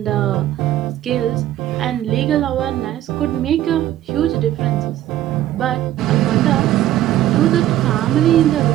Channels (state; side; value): quieter; left; 13.1 dB